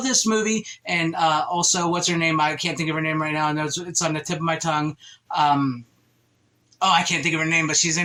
this movie. And also, what's her name? I can't think of her name right now. I know it's on the tip of my tongue. I can't think of her name, but she's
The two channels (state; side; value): identical; both; correlation 1.00